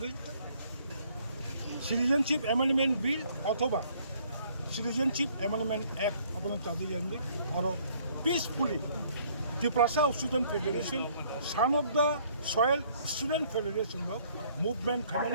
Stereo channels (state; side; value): inverted; both; correlation -0.62